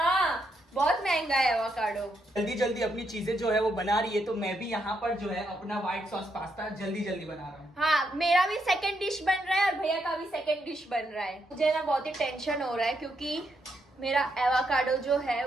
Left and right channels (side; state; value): both; normal; correlation 0.79